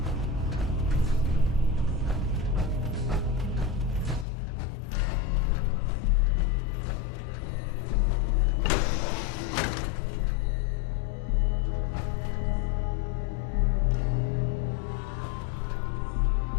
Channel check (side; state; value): right; drops out; at 4.2 s